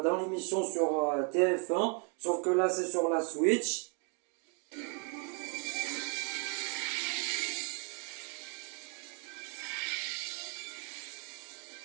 l'émission sur TF1, sauf que là c'est sur la Switch.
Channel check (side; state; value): left; quieter; 39.1 dB